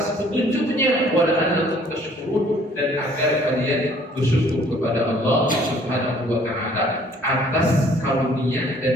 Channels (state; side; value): normal; both; correlation 0.58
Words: petunjuknya, wa la'allakum tashkurun, dan agar kalian bersyukur kepada Allah Subhanahu wa taala atas karunia